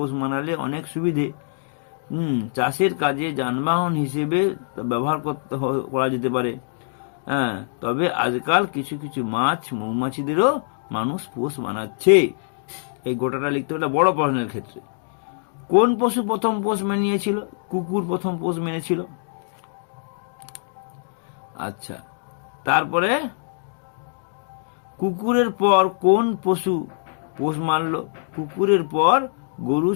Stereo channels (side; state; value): right; silent; digital silence